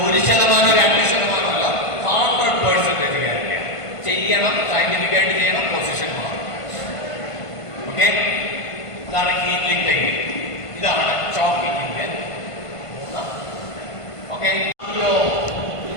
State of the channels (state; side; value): late; right; 1.5 ms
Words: 1%, 2% അല്ല, 100% ഗ്യാരണ്ടിയാണ്. ചെയ്യണം, സയന്റിഫിക് ആയിട്ട് ചെയ്യണം, പൊസിഷൻ മാറും. ഓക്കെ, ഇതാണ് ഹീലിംഗ് ടെക്നിക്. ഇതാണ് ചോക്കിങ്ങിന്റെ 3. ഓക്കെ,